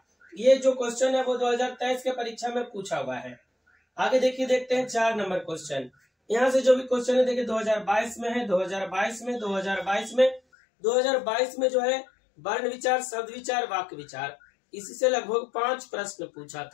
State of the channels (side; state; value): right; drops out; at 10.4 s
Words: ये जो क्वेश्चन है वो 2023 के परीक्षा में पूछा हुआ है। आगे देखिए, देखते हैं 4 नंबर क्वेश्चन। यहाँ से जो भी क्वेश्चन है देखिए 2022 में है, 2022 में जो है वर्ण विचार, शब्द विचार, वाक्य विचार, इसी से लगभग 5 प्रश्न पूछा